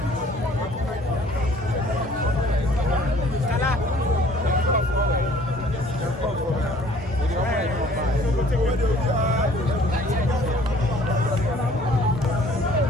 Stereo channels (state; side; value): normal; both; correlation 0.55